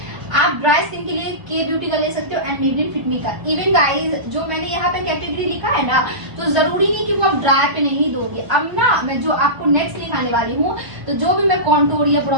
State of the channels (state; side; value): late; left; 1.0 ms